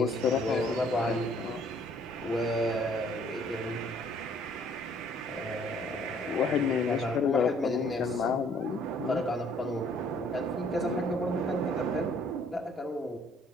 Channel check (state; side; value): normal; both; correlation 0.60